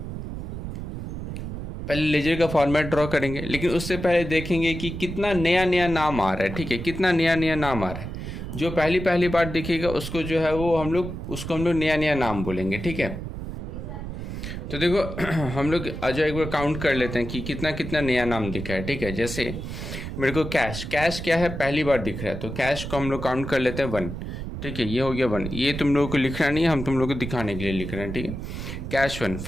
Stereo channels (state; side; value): noise; right; rumble, 7 dB below the sound